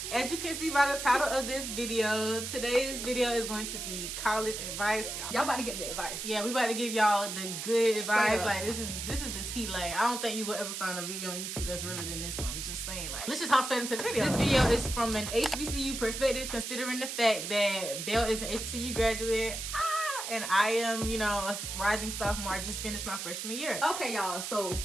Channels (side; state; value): right; noise; hiss, 5 dB below the sound